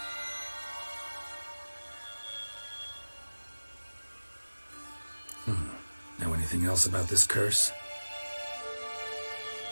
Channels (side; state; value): both; inverted; correlation -1.00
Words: Know anything else about this curse?